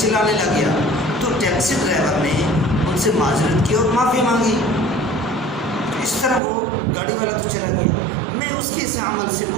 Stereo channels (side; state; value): left; drops out; at 6.4 s